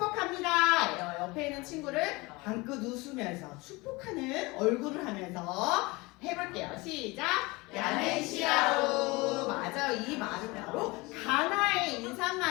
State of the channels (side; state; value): right; quieter; 23.9 dB